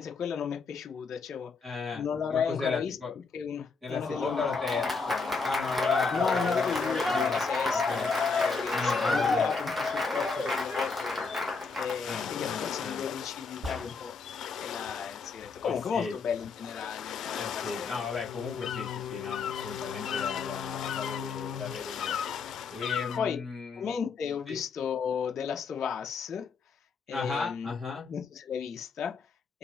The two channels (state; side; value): quieter; right; 4.8 dB